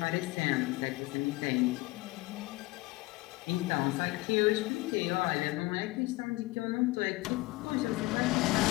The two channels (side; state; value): right; quieter; 20.9 dB